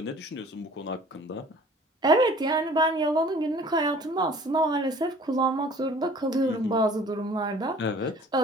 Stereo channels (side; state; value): both; normal; correlation 0.50